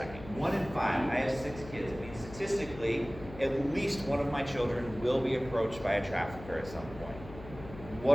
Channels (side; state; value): left; noise; hum, 15 dB below the sound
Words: 1 in 5, I have 6 kids. It means statistically, at least one of my children will be approached by a trafficker at some point.